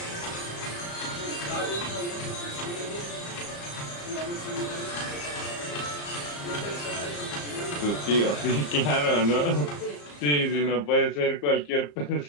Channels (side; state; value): right; late; 34 ms